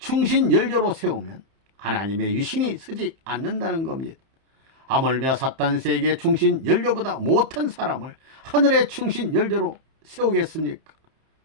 연료로 세우면 하나님의 위신이 서지 않는다는 겁니다. 하물며 사탄 세계 충신 연료보다 못한 사람을 하늘의 충신 연료로 세우겠습니까?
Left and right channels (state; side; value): late; left; 31 ms